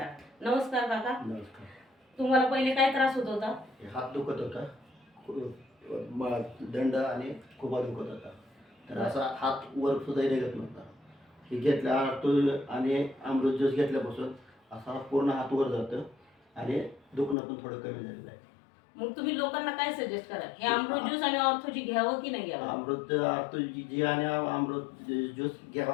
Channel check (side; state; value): right; drops out; at 17.4 s